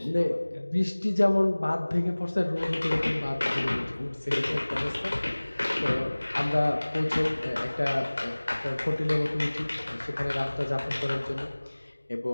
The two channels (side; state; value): both; inverted; correlation -1.00